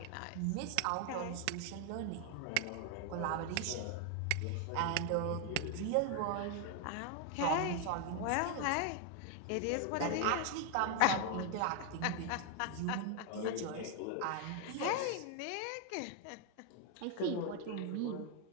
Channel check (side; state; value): both; different; correlation 0.01